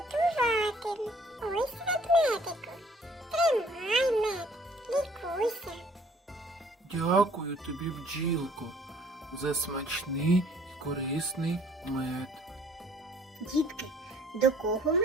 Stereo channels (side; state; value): both; normal; correlation 0.57